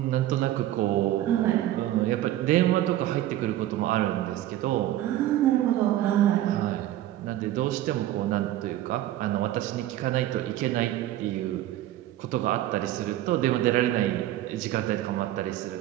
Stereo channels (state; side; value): quieter; left; 13.7 dB